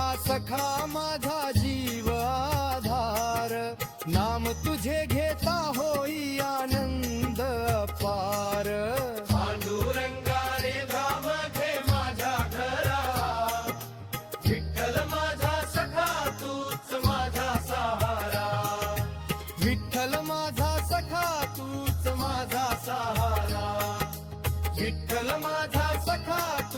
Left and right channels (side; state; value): both; identical; correlation 1.00